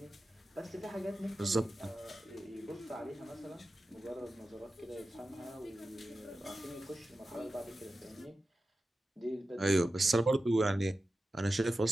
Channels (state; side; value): normal; both; correlation 0.93